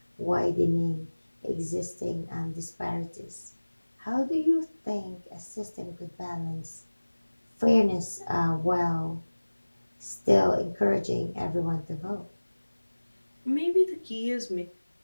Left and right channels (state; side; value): inverted; both; correlation -1.00